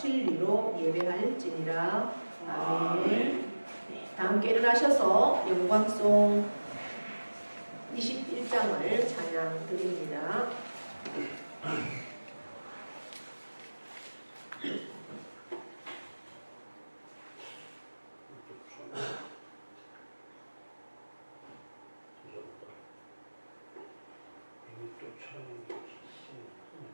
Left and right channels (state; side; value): inverted; both; correlation -1.00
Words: 예배할지니라. 아멘. 다 함께 일어나셔서 영광송 21장을 찬양 드립니다.